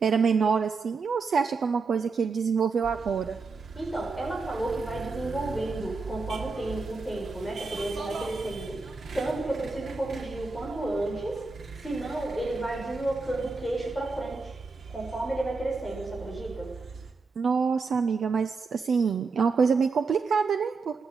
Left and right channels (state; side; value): quieter; left; 4.3 dB